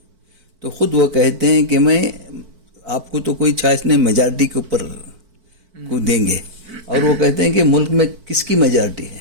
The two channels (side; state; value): left; late; 4.5 ms